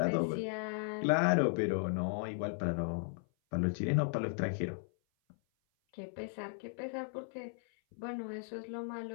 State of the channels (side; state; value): right; silent; 54 dB below the other